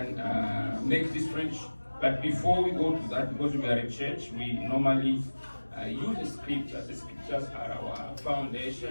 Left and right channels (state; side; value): inverted; both; correlation -1.00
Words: make this friendship. But before we go to that, because we are a church, we normally use the scriptures. The scriptures are our